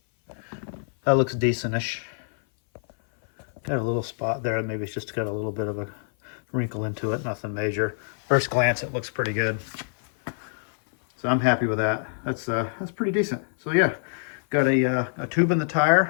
that looks decentish. Got a little spot there. Maybe it's just got a little bit of a wrinkle into it. Nothing major. First glance, it looks pretty good. So I'm happy with that. That's pretty decent. So yeah, got a tube in the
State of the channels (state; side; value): silent; right; 58 dB below the other